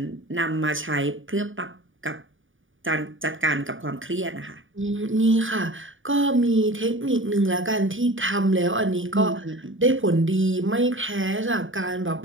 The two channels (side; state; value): left; late; 0.57 ms